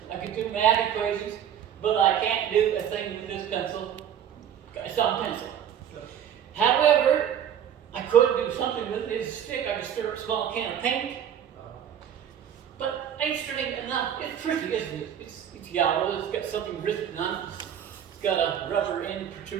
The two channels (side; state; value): left; quieter; 9.3 dB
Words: I could do math equations. But I can't do a thing with this pencil. It's on pencil. However, I could do something with it. It's a stick. I could stir up a small can of paint. But interesting enough, it's pretty, isn't it? It's yellow. It's got something written on it. It's got a rubber end